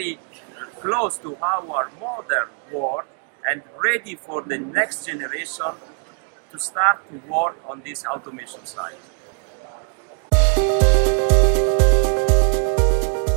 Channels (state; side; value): quieter; left; 37.7 dB